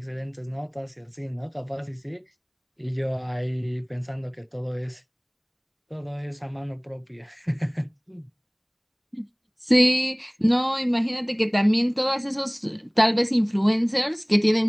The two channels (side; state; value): both; identical; correlation 1.00